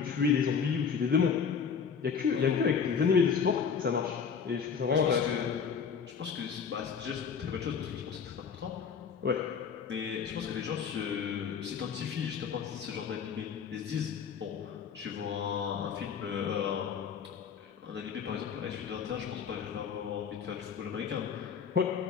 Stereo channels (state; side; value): quieter; right; 6.6 dB